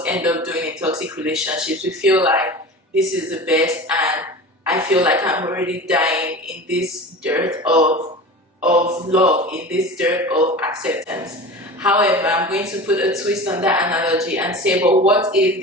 end up doing in toxic relationships. We feel like this is the best and I feel like I'm already dying in this dirt of love, in this dirt of acceptance. However, I'm going to put a twist on that analogy and say, but what if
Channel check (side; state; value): both; normal; correlation 0.33